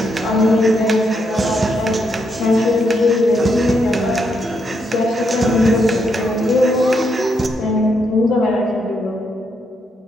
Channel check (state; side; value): normal; both; correlation 0.78